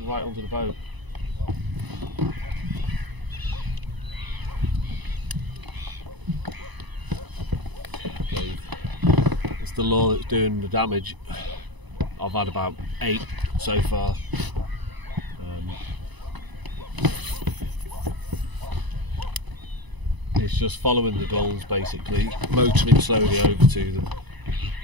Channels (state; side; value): late; left; 1.0 ms